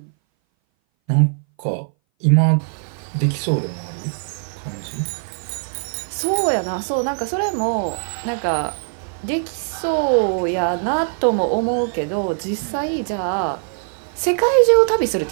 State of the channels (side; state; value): left; silent; 60 dB below the other